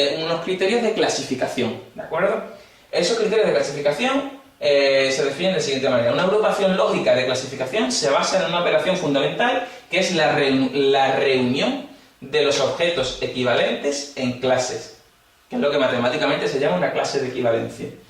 criterios de clasificación, ¿de acuerdo? Esos criterios de clasificación se definen de la siguiente manera. Una agrupación lógica de clasificación se basa en una operación fundamental que es la reunión de los objetos equivalentes en clases, que es lo que matemáticamente se llama una clase de equivalencia,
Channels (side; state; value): both; identical; correlation 1.00